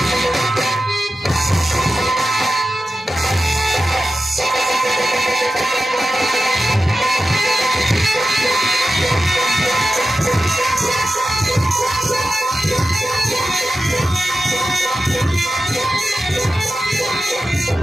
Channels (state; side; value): normal; both; correlation 0.93